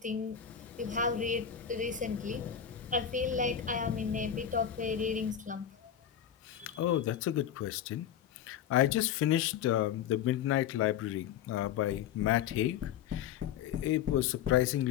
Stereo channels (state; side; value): quieter; right; 9.2 dB